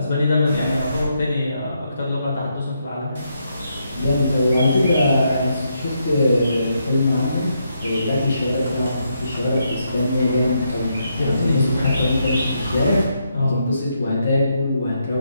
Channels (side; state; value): both; inverted; correlation -0.79